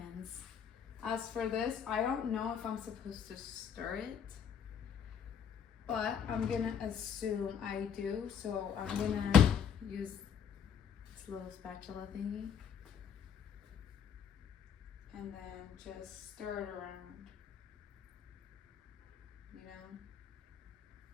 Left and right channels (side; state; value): right; quieter; 7.7 dB